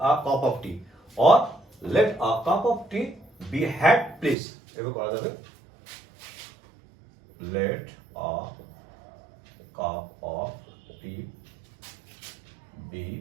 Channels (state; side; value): drops out; left; at 4.4 s